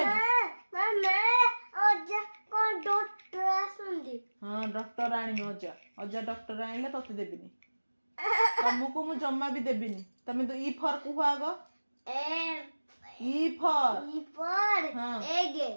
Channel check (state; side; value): inverted; both; correlation -1.00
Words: mama अजा कौन डॉक्टर आसुंदी हाँ डॉक्टर आनी अजा अजा डॉक्टर आइले तते देबिनी तुमको मु जम्मा भी देबिनी तमे तो ई फॉर कुह आगो ई फॉर हाँ egg